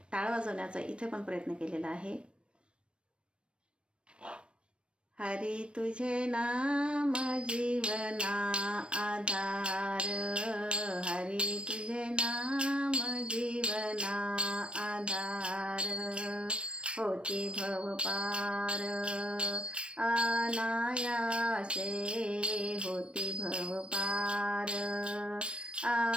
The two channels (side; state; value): left; late; 0.057 ms